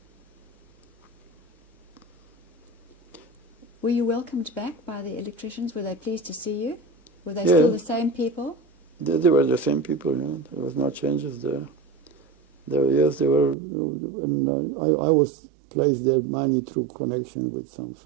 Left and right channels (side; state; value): left; drops out; at 13.6 s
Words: Were you welcomed back by the electricians? Were they pleased to see you? Were they still the same people? They were the same people, There was no changes there. Yes, they were, and I was placed there mainly through connection with some